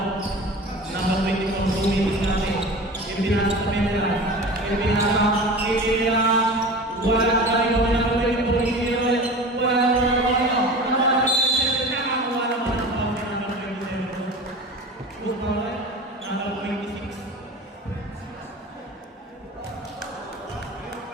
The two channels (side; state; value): both; normal; correlation 0.35